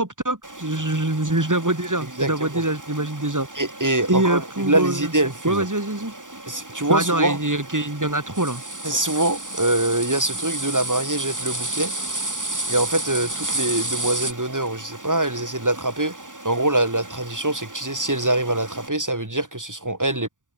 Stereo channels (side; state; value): left; late; 0.87 ms